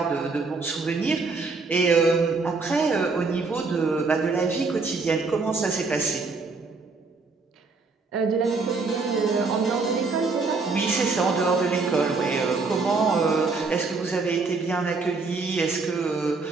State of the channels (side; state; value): left; quieter; 4.1 dB